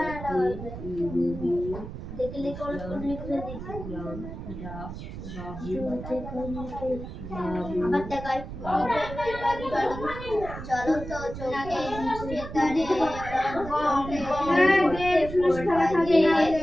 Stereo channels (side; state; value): right; noise; rumble, 10 dB below the sound